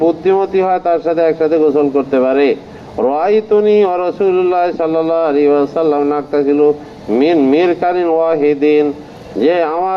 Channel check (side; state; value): both; identical; correlation 1.00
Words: বুদ্ধিমতী হয়, তার সাথে একসাথে গোসল করতে পারে। রাআইতুনি ওয়া রাসূলুল্লাহ সাল্লাল্লাহু আলাইহি ওয়াসাল্লাম নাকতাসিলু মিন মিরকানিন ওয়াহিদিন, যে